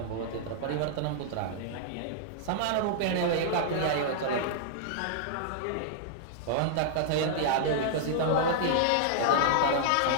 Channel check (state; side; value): different; both; correlation -0.01